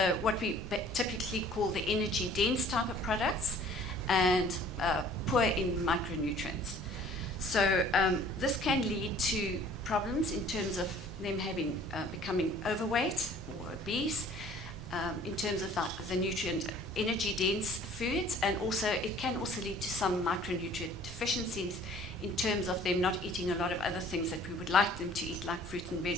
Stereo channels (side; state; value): both; normal; correlation 0.52